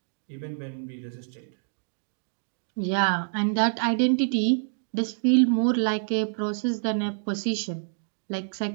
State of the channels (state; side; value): silent; left; digital silence